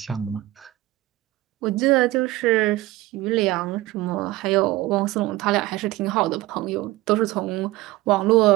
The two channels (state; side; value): quieter; left; 17.6 dB